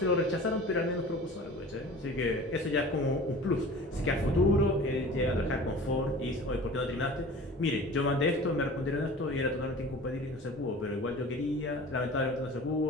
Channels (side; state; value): both; normal; correlation 0.41